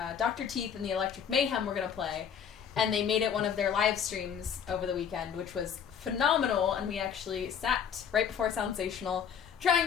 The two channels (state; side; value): quieter; right; 7.8 dB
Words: Dr. Teeth and the Electric Mayhem were going to play, and they made it one of their live streams over the weekend, which was phenomenal, and we actually sat right before Soundsational trying